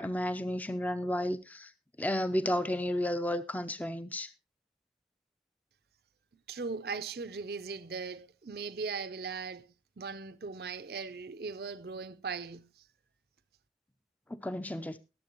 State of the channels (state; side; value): normal; both; correlation 0.68